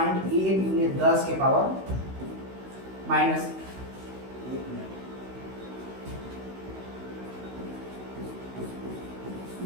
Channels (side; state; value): left; late; 16 ms